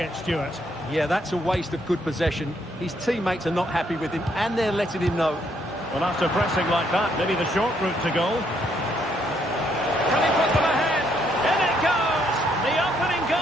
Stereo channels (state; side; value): normal; both; correlation 0.72